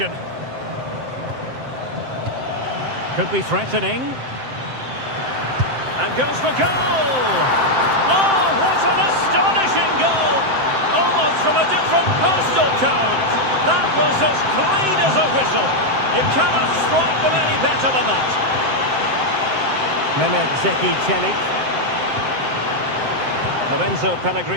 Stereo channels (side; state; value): left; late; 7.7 ms